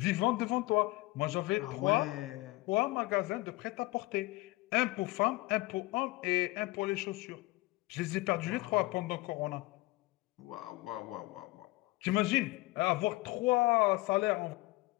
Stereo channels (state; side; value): quieter; right; 21.2 dB